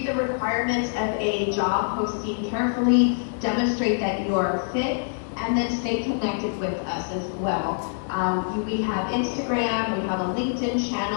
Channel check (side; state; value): right; silent; digital silence